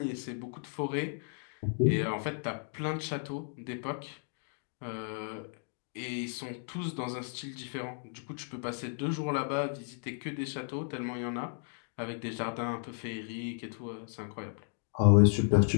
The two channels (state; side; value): silent; right; 55 dB below the other